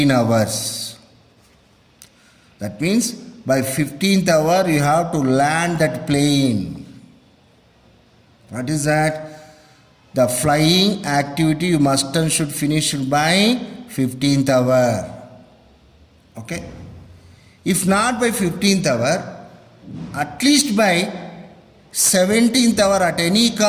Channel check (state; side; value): identical; both; correlation 1.00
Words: hours. That means by 15th hour you have to land that plane. What is that? The flying activity you must and should finish by 15th hour. Okay. If not by 15th hour, at least by 17th hour, at any